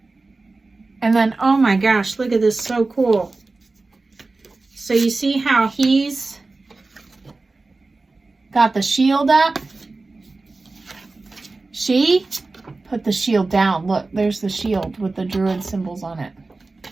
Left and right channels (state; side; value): quieter; left; 3.5 dB